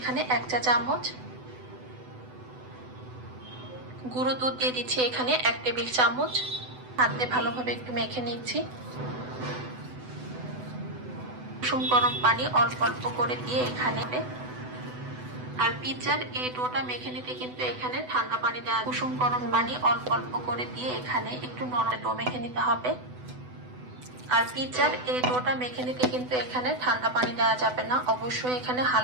1 চা চামচ, গুঁড়ো দুধ দিয়ে দিচ্ছি এখানে 1 টেবিল চামচ। হাতে ভালোভাবে একটু মেখে নিচ্ছি। কুসুম গরম পানি অল্প অল্প করে দিয়ে এখানে, আর পিৎজার এই ডোটা মেখে নিতে কিন্তু এখানে ঠান্ডা পানি দেওয়া, কুসুম গরম পানি অল্প অল্প করে দিয়ে এখানে একটু নরম ডো মেখে নিতে হবে। আর পিৎজার এই ডোটা মেখে নিতে কিন্তু এখানে ঠান্ডা পানি দেওয়া যাবে না, অবশ্যই এখানে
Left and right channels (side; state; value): left; late; 8.0 ms